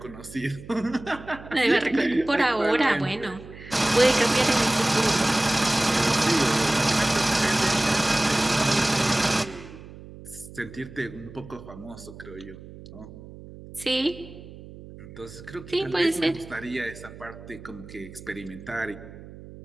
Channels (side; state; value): right; noise; hum, 16 dB below the sound